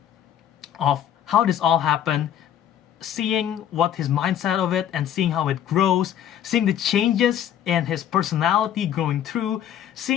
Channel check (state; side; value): quieter; right; 10.2 dB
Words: of how this all happened, seeing what his mindset of it and seeing how it grows, seeing the changes in his personality going through,